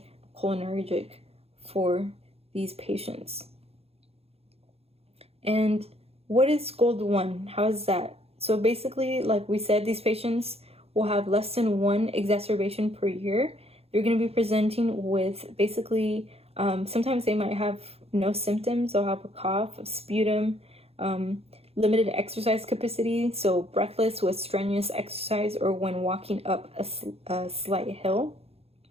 for these patients. And what is GOLD 1? How is that? So basically, like we said, these patients will have less than 1 exacerbation per year. They're going to be presenting with basically, sometimes they might have no symptoms. They'll have a cough, a sputum, limited exercise capacity, so breathless with strenuous exercise or when walking up a slight hill.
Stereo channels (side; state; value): left; late; 0.29 ms